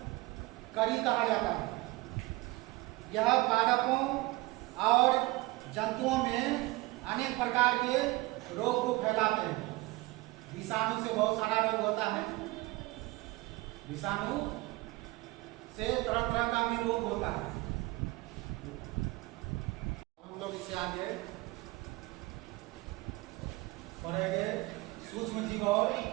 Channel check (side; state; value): left; quieter; 21.1 dB